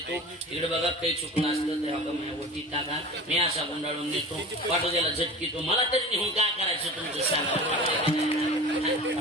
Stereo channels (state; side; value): normal; both; correlation 0.36